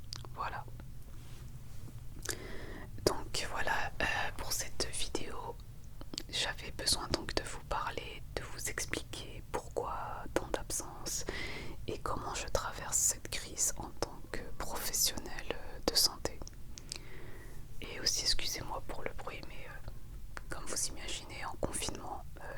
Voilà. Donc voilà pour cette vidéo. J'avais besoin donc de vous parler, de vous expliquer pourquoi tant d'absence et comment je traverse cette crise en tant que professionnel de santé. Et aussi excusez-moi pour le bruit, mais comme vous imaginez en confinement,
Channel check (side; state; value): both; identical; correlation 1.00